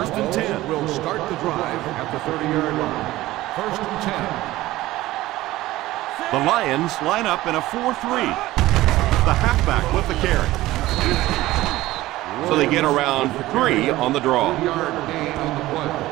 and 10. Will start the drive at the 30-yard line. First and 10. The Lions line up in a 4-3. The halfback with the carry. So they get around 3 on the draw. 3-yard gain on the play.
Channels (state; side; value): quieter; left; 16.9 dB